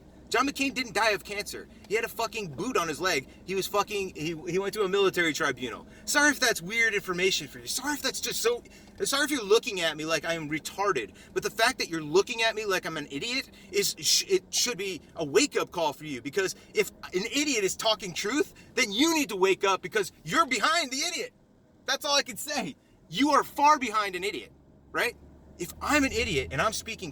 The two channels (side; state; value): both; identical; correlation 1.00